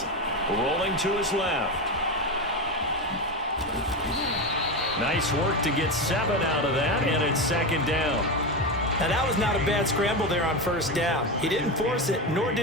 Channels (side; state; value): both; normal; correlation 0.17